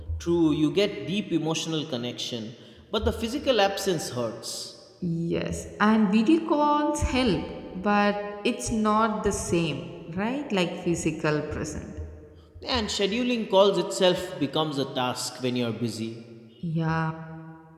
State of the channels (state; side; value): identical; both; correlation 1.00